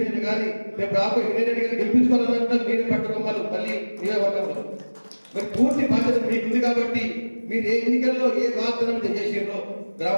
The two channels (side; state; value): both; inverted; correlation -1.00